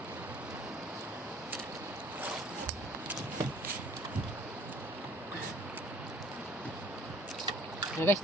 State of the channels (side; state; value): both; normal; correlation 0.56